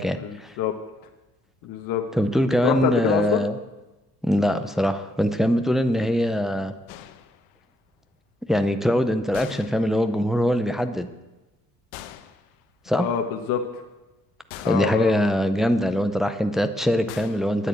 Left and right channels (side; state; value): both; normal; correlation 0.77